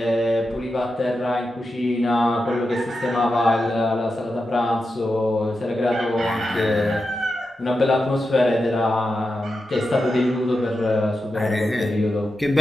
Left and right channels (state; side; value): normal; both; correlation 0.89